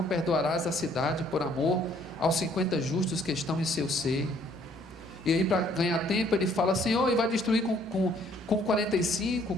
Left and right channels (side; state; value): both; normal; correlation 0.62